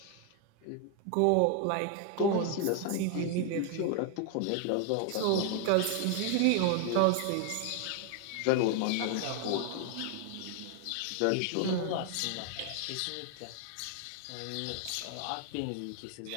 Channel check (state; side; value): different; both; correlation 0.00